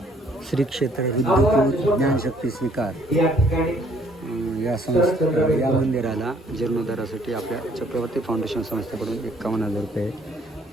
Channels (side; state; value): both; normal; correlation 0.62